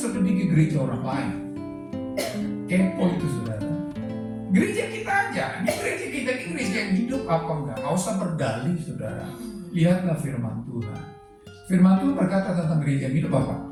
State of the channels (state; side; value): identical; both; correlation 1.00